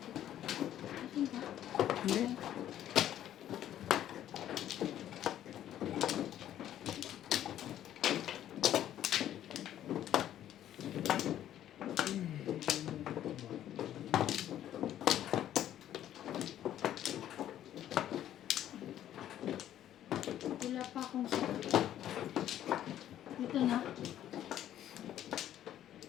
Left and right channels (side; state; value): right; quieter; 11.6 dB